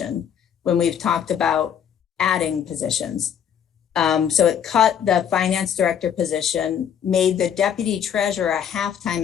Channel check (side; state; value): right; quieter; 8.7 dB